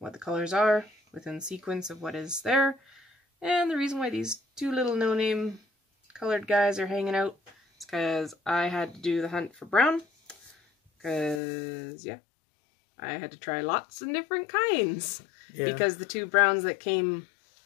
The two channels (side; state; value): right; drops out; at 11.4 s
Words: the colors are within sequence of what is there. And the reason why these two little no-name colored guys are hanging out is because I had to do the hunt for brown. Because, yeah, I had to try lots of different kinds. Yeah. Because the two browns that came,